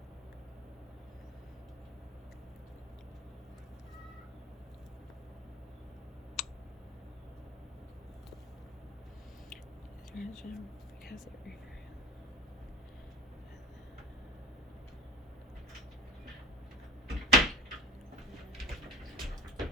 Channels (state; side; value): normal; both; correlation 0.38